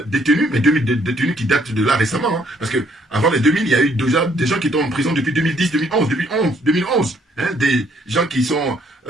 détenus, mais 2000 détenus qui datent de là récemment. Hein, parce que avant les 2000, il y a eu déjà des gens qui étaient en prison depuis 2010, 2011. Hein, des gens qui sont,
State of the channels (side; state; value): both; normal; correlation 0.66